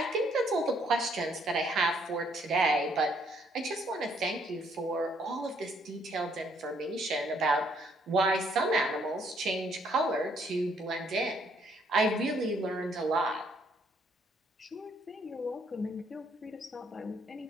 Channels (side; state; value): both; normal; correlation 0.68